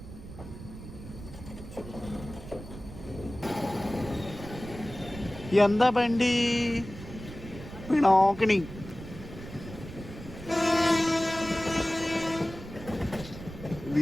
ఎంత బండి Pinakini.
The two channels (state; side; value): noise; right; rumble, 13 dB below the sound